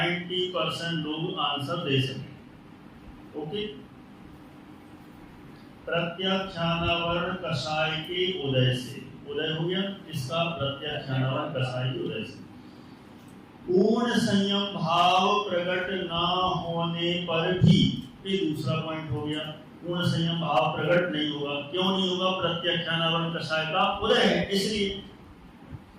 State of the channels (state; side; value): identical; both; correlation 1.00